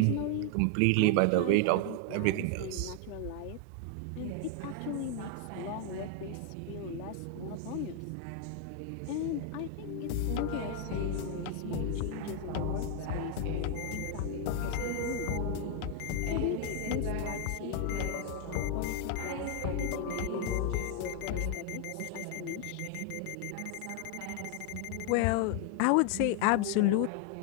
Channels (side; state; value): both; different; correlation 0.00